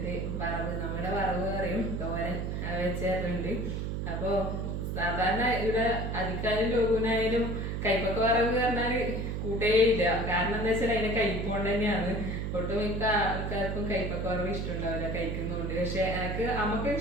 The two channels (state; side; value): noise; right; hum, 2 dB below the sound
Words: വറവ്, നമ്മുടെ വറവ് പറയും, തോരൻ വെച്ചേരുന്നുണ്ട്. അപ്പൊ സാധാരണ ഇവിടെ അധികാരം ലോകനായാലും കൈപ്പൊക്കെ വറവ് പറഞ്ഞാല് കൂട്ടേയില്ല. കാരണം എന്താ വെച്ചാൽ അതിന്റെ കൈപ്പോണ്ട് തന്നെയാണ്. ഒട്ടുമിക്ക ആൾക്കാർക്കും കൈപ്പൊക്കെ വറവ് ഇഷ്ടമുണ്ടാവില്ല, കഴിക്കുന്നുണ്ട്. പക്ഷെ എനിക്ക് അമ്മക്ക്